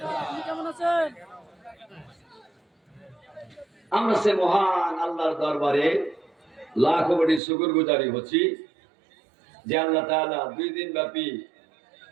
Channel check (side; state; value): left; drops out; at 7.4 s